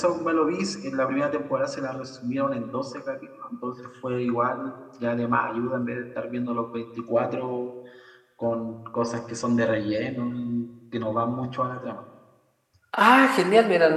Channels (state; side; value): identical; both; correlation 1.00